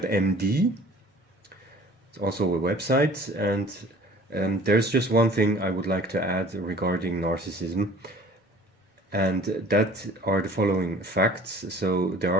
It's also a website, and there's just one thing I would like to add regarding narcissism, and that are the following facts. So the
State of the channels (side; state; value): both; normal; correlation 0.48